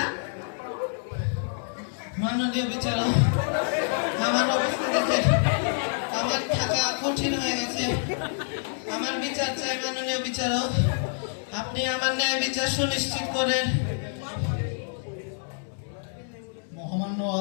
মাননীয় বিচারক, আমার অবস্থা দেখে আমার থাকা কঠিন হয়ে গেছে। আমার বিচার চাই মাননীয় বিচারক, আপনি আমার ন্যায় বিচার সুনিশ্চিত করেন। মহামান্য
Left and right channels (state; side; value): silent; right; digital silence